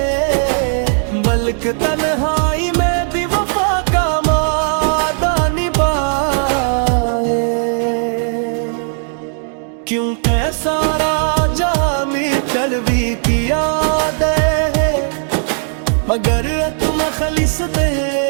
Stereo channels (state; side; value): silent; left; digital silence